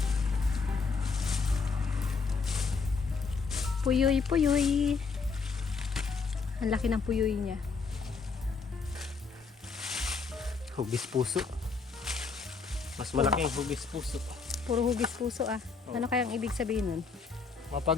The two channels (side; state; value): right; quieter; 4.8 dB